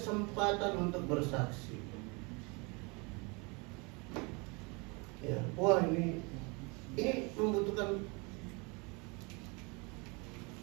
untuk bersaksi. Ya, wah ini membutuhkan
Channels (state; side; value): quieter; left; 29.7 dB